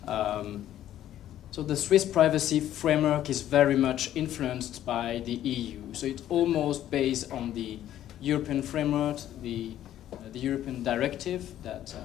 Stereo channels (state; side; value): quieter; right; 12.1 dB